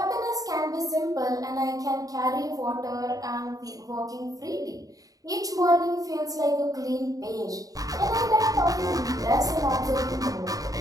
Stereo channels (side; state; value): left; late; 0.17 ms